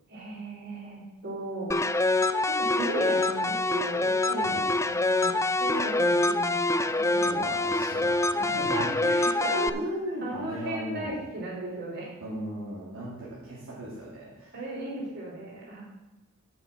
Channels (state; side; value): normal; both; correlation 0.49